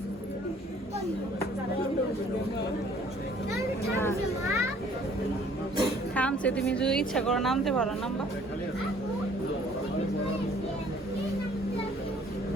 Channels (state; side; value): normal; both; correlation 0.57